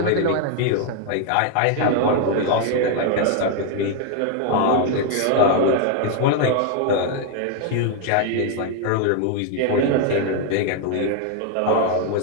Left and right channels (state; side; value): different; both; correlation 0.00